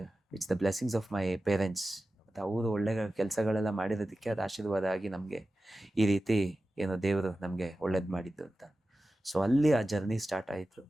it's the blessings of my parents. ಮತ್ತು ಅವರು ಒಳ್ಳೆ ಕೆಲಸಗಳೆಲ್ಲ ಮಾಡಿರೋದಕ್ಕೆ ಅದು ಆಶೀರ್ವಾದ ಆಗಿ ನಮಗೆ ಈ ರೀತಿ ಏನೋ ದೇವರು ನಮಗೆ ಒಳ್ಳೇದು ಮಾಡಿದ್ದು ಅಂತ. ಸೊ ಅಲ್ಲಿ ಆ ಜರ್ನಿ ಸ್ಟಾರ್ಟ್ ಆಯಿತು.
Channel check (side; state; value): both; normal; correlation 0.94